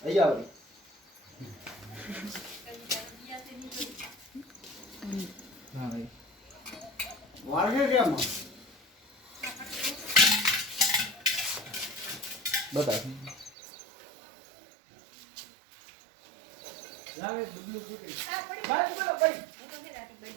અહીંયા આવી હા ભાઈ વાળગે કેમ બતા જાવે ડુબલું ફૂટી. ભાઈ બોલો ભાઈ.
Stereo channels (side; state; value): left; drops out; at 13.5 s